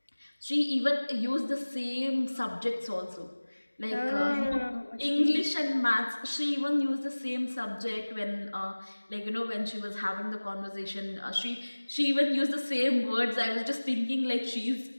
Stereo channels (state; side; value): inverted; both; correlation -1.00